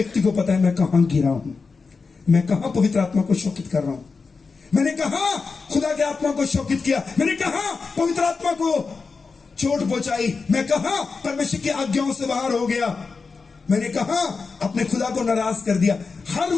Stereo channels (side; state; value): right; quieter; 4.6 dB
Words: को पता है मैं कहां गिरा हूं, मैं कहां पवित्र आत्मा को शोकित कर रहा हूं, मैंने कहा खुदा के आत्मा को शोकित किया, मैंने कहा पवित्र आत्मा को चोट पहुंचाई, मैं कहा परमेश्वर की आज्ञाओं से बाहर हो गया, मैंने कहा अपने खुदा को नाराज कर दिया। हर